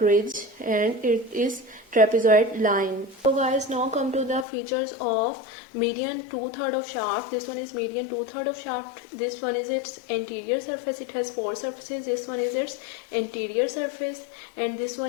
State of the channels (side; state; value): right; drops out; at 4.5 s